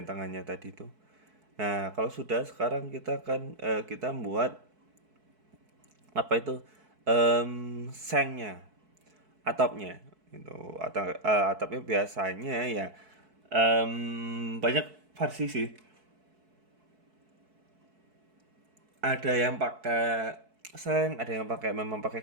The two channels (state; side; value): late; left; 4.6 ms